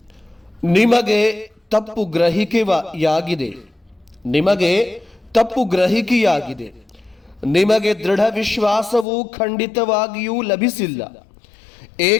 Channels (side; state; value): right; drops out; at 9.1 s